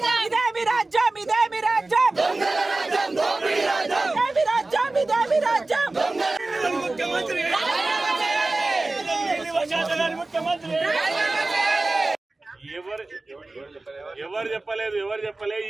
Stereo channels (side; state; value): left; quieter; 3.1 dB